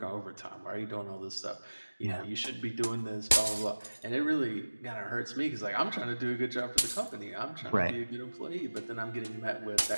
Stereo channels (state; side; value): inverted; both; correlation -1.00